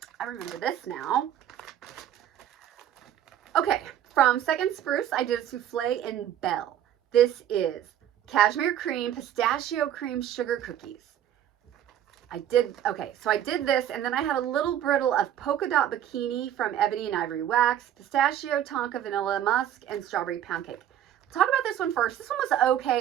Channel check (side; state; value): left; quieter; 10.9 dB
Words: I remember this now. Okay. From Second Spruce, I did a souffle in Belle. This is cashmere cream, pistachio cream, sugar cookies. I did this, and then I had a little brittle of polka dot bikini from Ebony and Ivory Wax, pistachio, tonka, vanilla, musk, and strawberry pound cake. Talk about this one first. This one was okay.